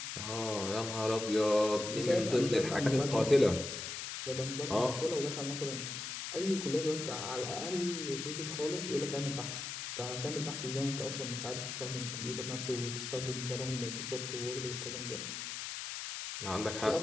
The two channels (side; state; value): left; noise; hiss, 6 dB below the sound